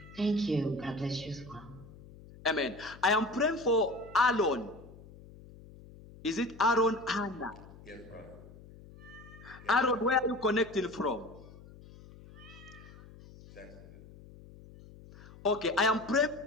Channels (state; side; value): noise; left; hum, 19 dB below the sound